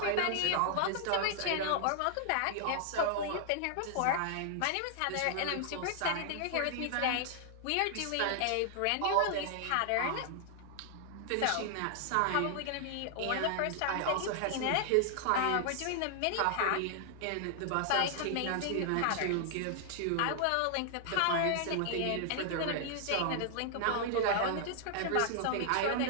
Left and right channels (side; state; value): both; different; correlation 0.00